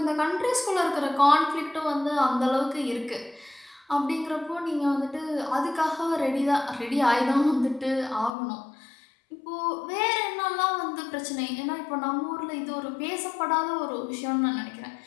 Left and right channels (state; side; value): drops out; right; at 8.3 s